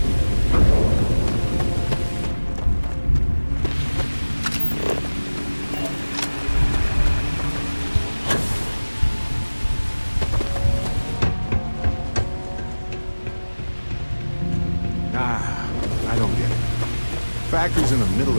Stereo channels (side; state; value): both; inverted; correlation -1.00